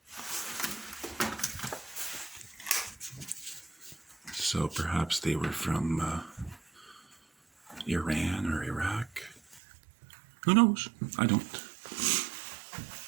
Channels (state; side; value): drops out; left; at 9.6 s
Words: So perhaps they were from Iran or Iraq. Who knows? I don't.